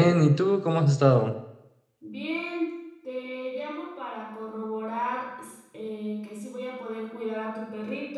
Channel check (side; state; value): both; identical; correlation 1.00